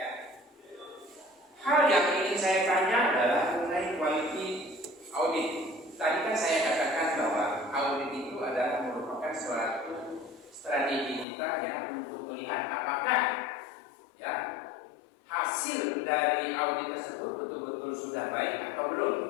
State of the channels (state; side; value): drops out; right; at 11.2 s